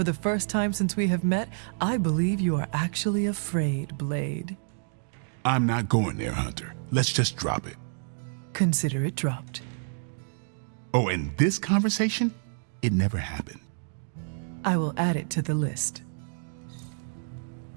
the first time since we have met, I believe you are actually afraid, Blade. I'm not going there, Hunter. Let's just drop it. Consider it dropped. Oh, and this conversation? It never happened. I will add it to the list.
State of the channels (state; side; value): silent; left; digital silence